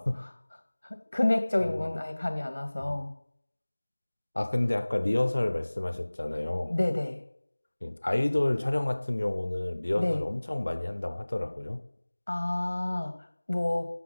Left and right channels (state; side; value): inverted; both; correlation -1.00